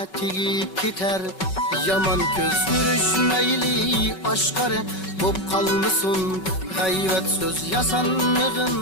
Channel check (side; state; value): right; late; 5.3 ms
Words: tigip gider. Yaman göz görüşmeyli aşkare bop kalmışsın. Gayvet söz